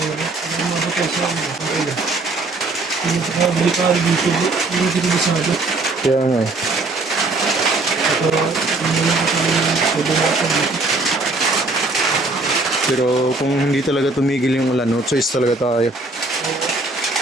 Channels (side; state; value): left; quieter; 3.2 dB